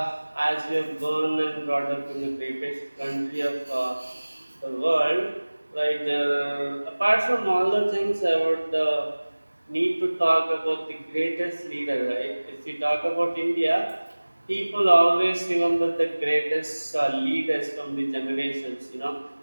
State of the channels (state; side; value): inverted; both; correlation -1.00